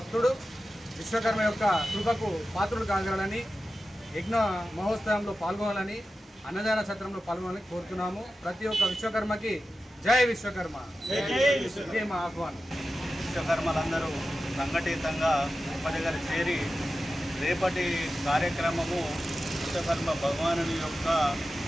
విశ్వకర్మ యొక్క కృపకు పాత్రులు కాగలని, యజ్ఞ మహోత్సవంలో పాల్గొనాలని, అన్నదాన సత్రంలో పాల్గొనాలని కోరుతున్నాము. ప్రతి ఒక్క విశ్వకర్మకి జై విశ్వకర్మ, ఇదే మా ఆహ్వానం. విశ్వకర్మలందరూ సంఘటితంగా ఒక దగ్గర చేరి రేపటి కార్యక్రమము విశ్వకర్మ భగవానుని యొక్క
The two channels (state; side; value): normal; both; correlation 0.93